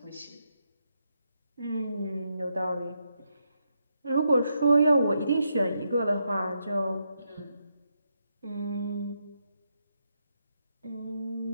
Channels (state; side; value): inverted; both; correlation -0.81